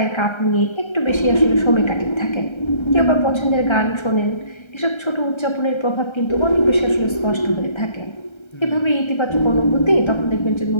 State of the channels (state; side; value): late; right; 1.3 ms